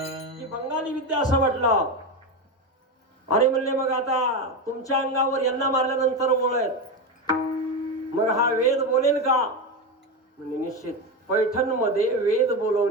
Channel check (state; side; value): normal; both; correlation 0.15